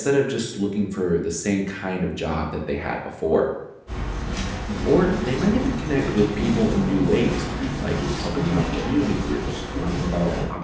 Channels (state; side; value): identical; both; correlation 1.00